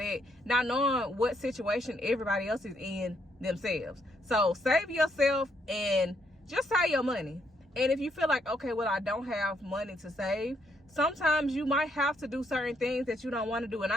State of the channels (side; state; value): both; normal; correlation 0.74